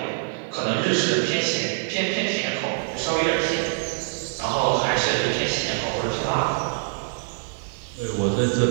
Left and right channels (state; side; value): silent; left; digital silence